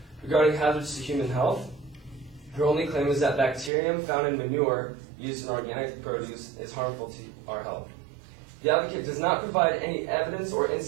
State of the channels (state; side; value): drops out; left; at 3.7 s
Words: Regarding hazards to human health, her only claim is that bacterium found in manure used in organic produce is harmful to our health. The advocate does not provide any evidence or